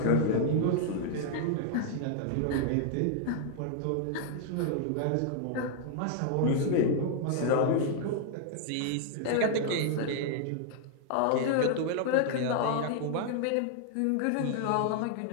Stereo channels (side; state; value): both; different; correlation 0.00